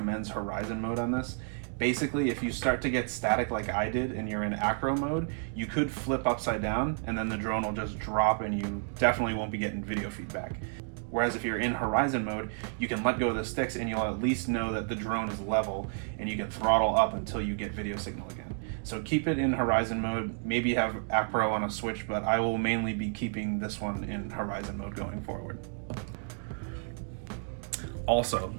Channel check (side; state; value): left; silent; 57 dB below the other